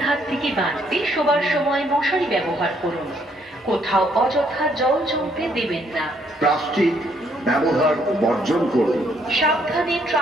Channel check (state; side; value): normal; both; correlation 0.69